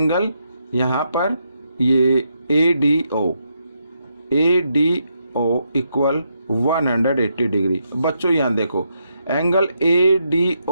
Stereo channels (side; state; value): both; inverted; correlation -0.80